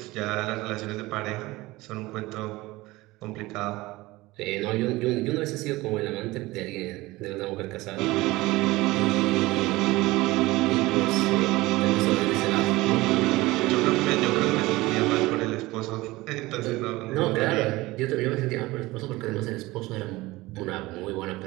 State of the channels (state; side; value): quieter; left; 20.0 dB